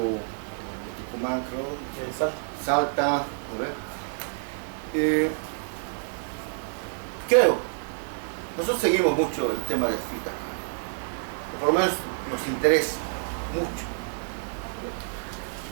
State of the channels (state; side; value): silent; left; digital silence